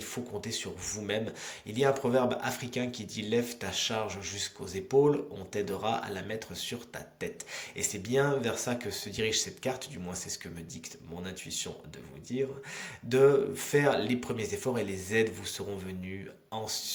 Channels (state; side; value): identical; both; correlation 1.00